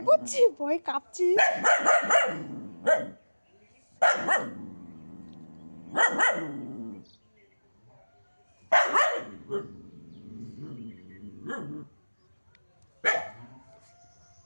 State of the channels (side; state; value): both; inverted; correlation -1.00